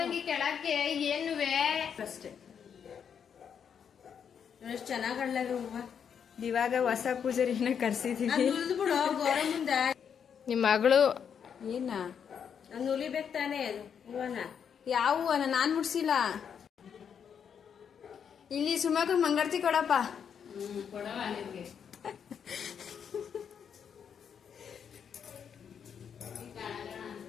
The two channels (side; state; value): right; quieter; 7.6 dB